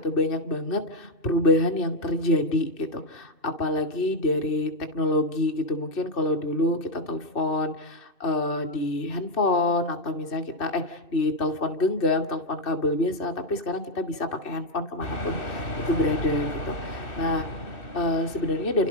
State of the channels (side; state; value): right; late; 2.6 ms